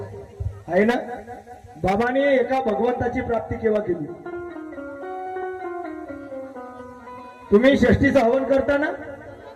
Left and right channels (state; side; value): identical; both; correlation 1.00